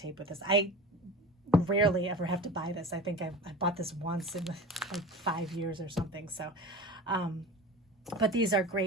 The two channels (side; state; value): both; normal; correlation 0.34